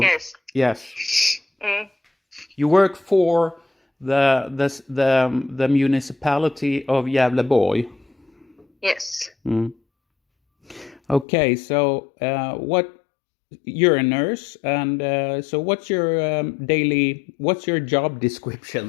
Yes. You work for the municipality of Gävleborg. Yes. Okay, so you're a nurse, and so what's your job description,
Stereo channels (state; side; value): drops out; right; at 11.2 s